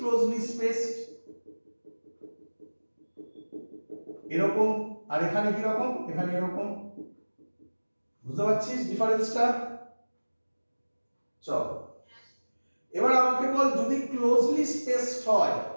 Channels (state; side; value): inverted; both; correlation -1.00